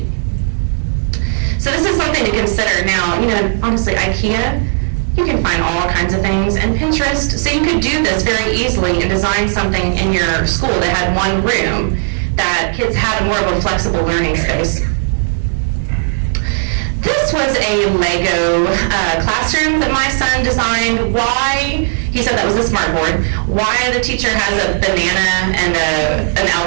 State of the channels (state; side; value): silent; left; digital silence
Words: So this is something to consider. Now, honestly, IKEA, you can find all kinds of things, and Pinterest, so you could do this very easily and design something in your school that had one room that kids had more of a flexible learning space. This was a Lego classroom that my son designed. Why? He said that was a smart board. Why the teacher has a banana and an